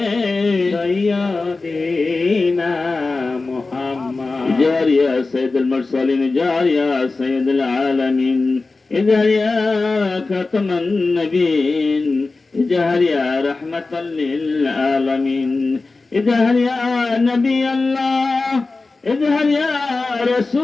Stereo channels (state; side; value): quieter; right; 3.6 dB